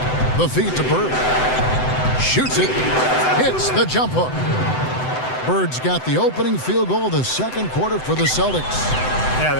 The feed to Bird. Shoots it. Hits the jump hook. Bird's got the opening field goal of the second quarter for the Celtics. Yeah,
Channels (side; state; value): right; late; 7.9 ms